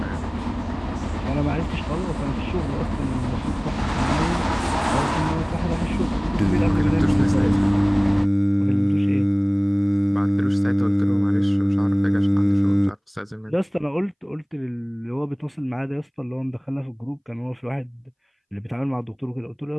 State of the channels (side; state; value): both; identical; correlation 1.00